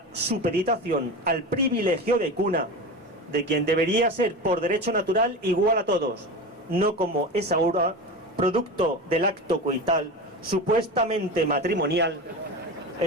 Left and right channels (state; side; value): normal; both; correlation 0.26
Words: supeditación al privilegio de cuna de quien debería ser por derecho natural igual a todos, no como es ahora producto del acto coital supuestamente matrimonial